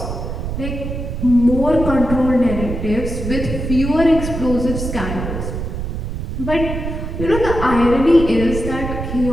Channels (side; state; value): right; noise; rumble, 5 dB below the sound